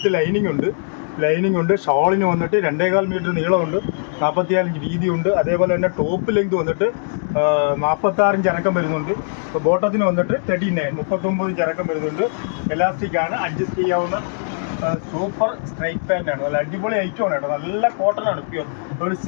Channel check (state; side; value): silent; right; digital silence